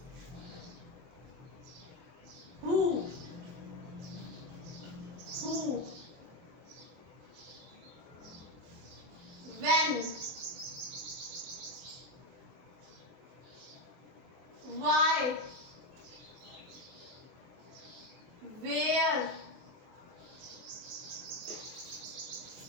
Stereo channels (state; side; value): late; left; 23 ms